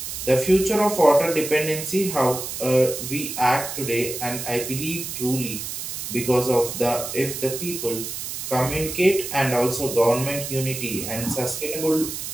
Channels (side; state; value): right; noise; hiss, 6 dB below the sound